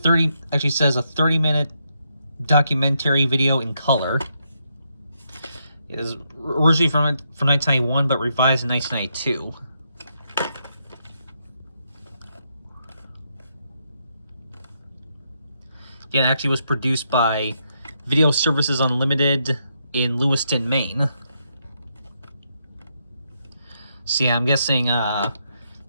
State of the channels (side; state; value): both; inverted; correlation -0.79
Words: documentary video in color. It is originally from 1991, but revised in 1992. Again, it actually was produced by Video Services Unlimited in Lewiston, Maine. So yeah, I'm guessing